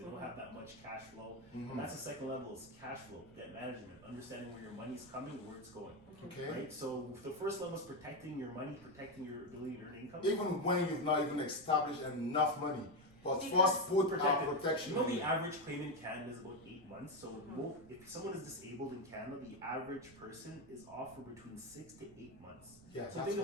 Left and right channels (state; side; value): noise; right; rumble, 24 dB below the sound